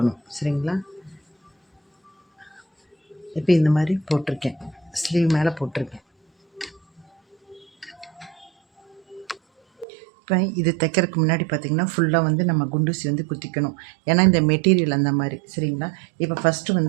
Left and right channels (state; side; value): drops out; left; at 9.9 s